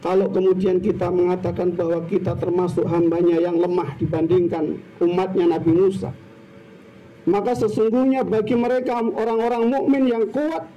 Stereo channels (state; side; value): identical; both; correlation 1.00